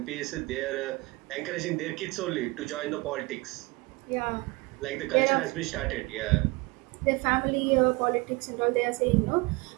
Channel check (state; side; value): quieter; left; 24.1 dB